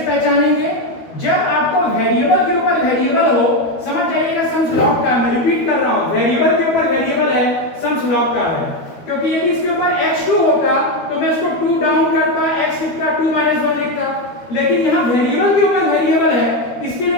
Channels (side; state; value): right; late; 13 ms